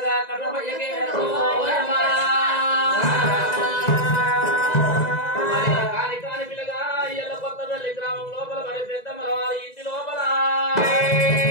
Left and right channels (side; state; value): right; late; 2.0 ms